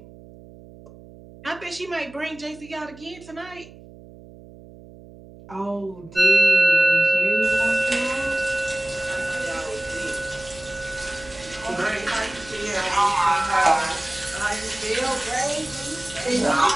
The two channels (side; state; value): right; noise; hum, 20 dB below the sound